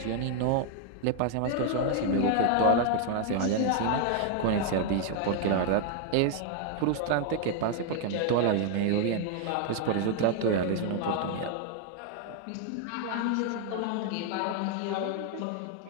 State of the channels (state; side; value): different; both; correlation 0.00